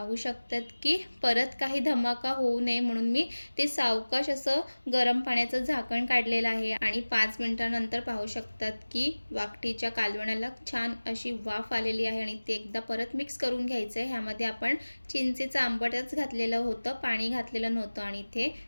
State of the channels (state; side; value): inverted; both; correlation -1.00